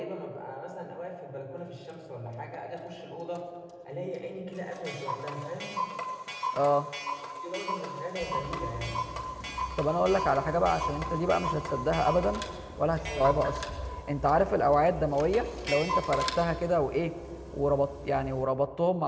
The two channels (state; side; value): identical; both; correlation 1.00